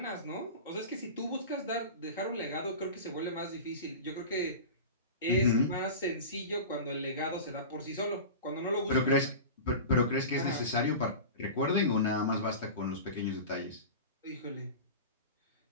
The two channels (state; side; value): inverted; both; correlation -0.31